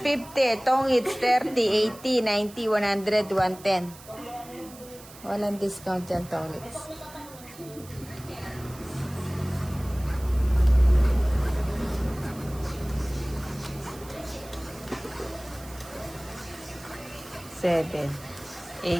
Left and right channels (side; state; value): right; noise; hiss, 19 dB below the sound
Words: 50, tong hits 30, 80, 90, 100, 110. Walang discount yan, tong hits. Seven,